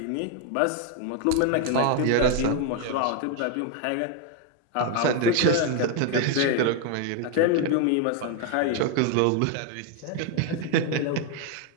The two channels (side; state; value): both; different; correlation 0.01